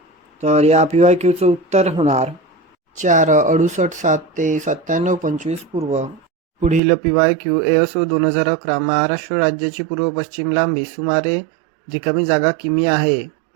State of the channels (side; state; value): left; drops out; at 6.8 s